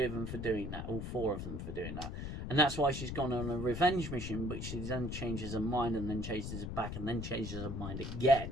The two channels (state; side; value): noise; left; rumble, 5 dB below the sound